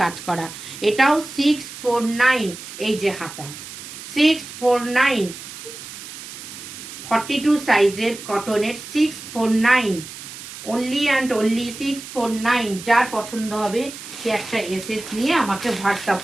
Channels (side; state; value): right; noise; hiss, 13 dB below the sound